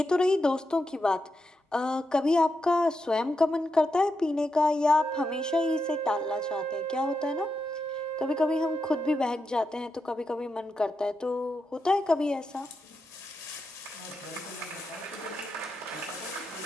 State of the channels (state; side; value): normal; both; correlation 0.86